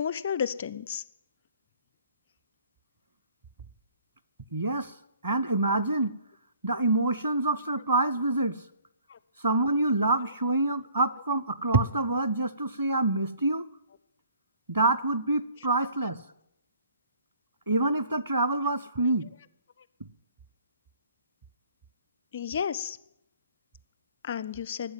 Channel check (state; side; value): inverted; both; correlation -0.55